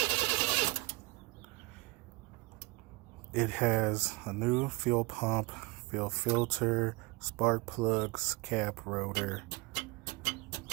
It has a new fuel pump, fuel filter, spark plugs, cap rotor,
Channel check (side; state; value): left; quieter; 24.1 dB